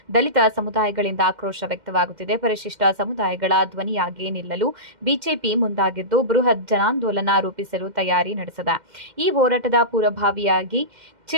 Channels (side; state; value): left; late; 2.1 ms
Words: ದಲಿತ ಸಮುದಾಯಗಳಿಂದ ಆಕ್ರೋಶ ವ್ಯಕ್ತವಾಗುತ್ತಿದೆ. ಪರಿಶಿಷ್ಟ ಸಮುದಾಯಗಳ ಧ್ವನಿಯಾಗಿ ನಿಲ್ಲಲು ಬಿಜೆಪಿ ಮುಂದಾಗಿದ್ದು ಬೃಹತ್ ಜನಾಂದೋಲನ ರೂಪಿಸಲು ತಯಾರಿ ನಡೆಸಿದೆ. ಈ ಹೋರಾಟದ ಪೂರ್ವಭಾವಿಯಾಗಿ